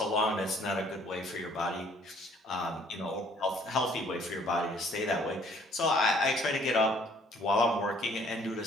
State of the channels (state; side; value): normal; both; correlation 0.59